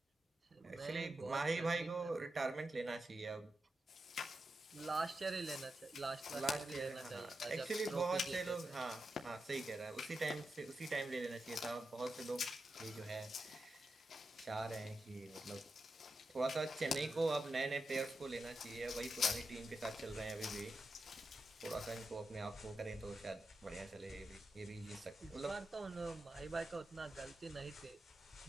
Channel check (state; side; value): normal; both; correlation 0.88